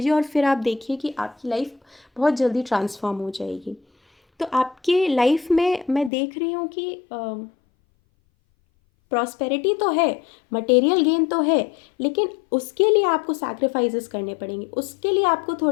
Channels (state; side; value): drops out; right; at 6.1 s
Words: और फिर आप देखिए कि आपकी लाइफ बहुत जल्दी ट्रांसफॉर्म हो जाएगी। तो आपके लाइफ में मैं देख रही हूँ कि प्रॉस्पेरिटी तो है, मटेरियल गेन तो है, लेकिन उसके लिए आपको सैक्रिफाइसेस करने पड़ेंगे, उसके लिए आपको